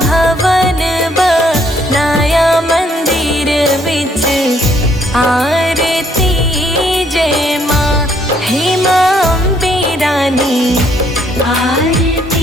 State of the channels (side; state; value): both; normal; correlation 0.68